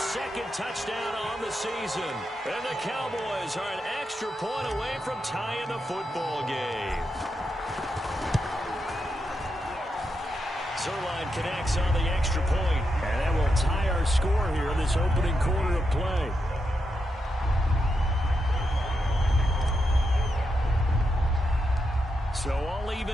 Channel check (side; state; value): both; normal; correlation 0.85